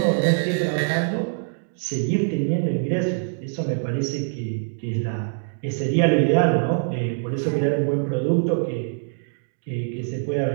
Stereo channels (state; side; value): silent; left; digital silence